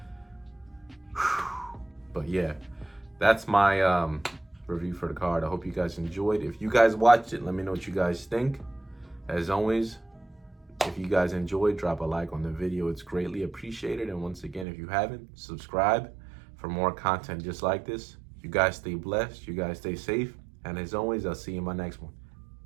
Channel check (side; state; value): left; drops out; at 14.7 s